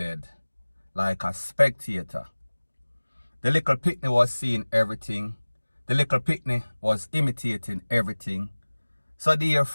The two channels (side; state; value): both; inverted; correlation -1.00